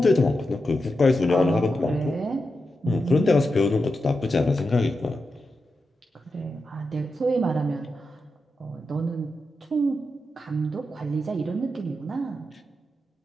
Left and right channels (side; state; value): both; normal; correlation 0.88